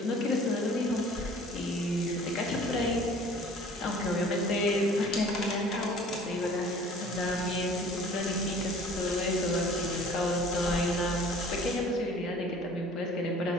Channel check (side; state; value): both; normal; correlation 0.49